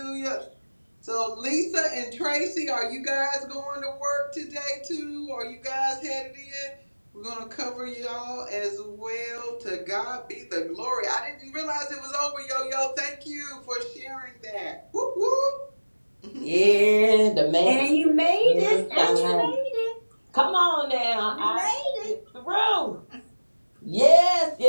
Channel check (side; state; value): both; inverted; correlation -1.00